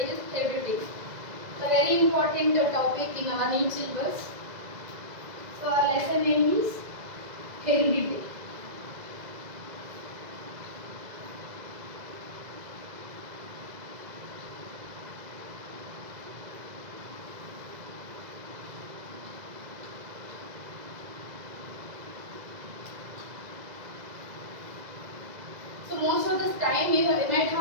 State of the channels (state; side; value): late; left; 2.0 ms